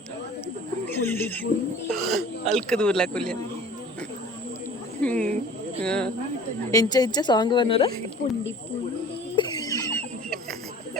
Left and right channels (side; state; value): both; normal; correlation 0.46